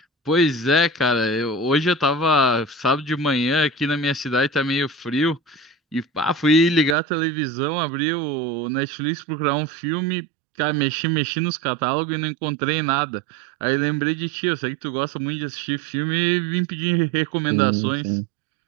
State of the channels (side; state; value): left; drops out; at 7.0 s